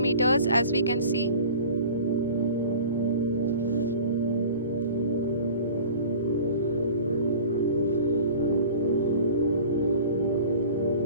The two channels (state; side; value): inverted; both; correlation -0.42